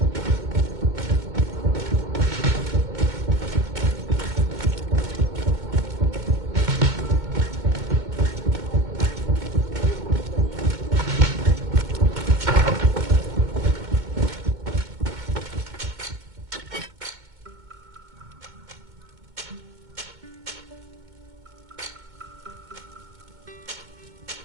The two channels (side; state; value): left; late; 2.2 ms